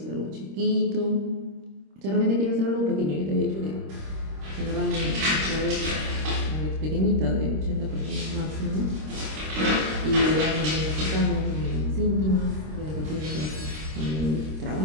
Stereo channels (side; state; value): left; late; 26 ms